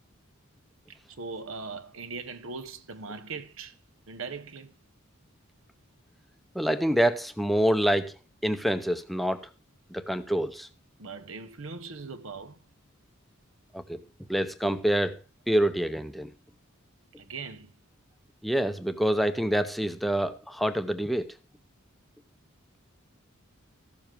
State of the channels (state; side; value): normal; both; correlation 0.90